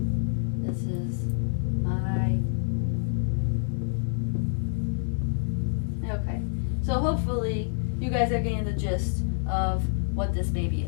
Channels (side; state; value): right; silent; 59 dB below the other